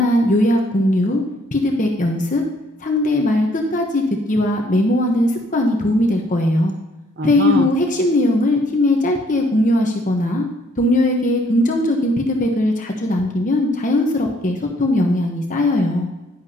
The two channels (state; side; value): normal; both; correlation 0.65